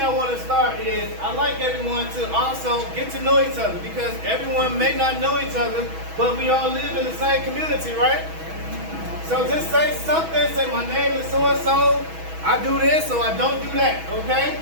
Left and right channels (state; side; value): late; left; 6.2 ms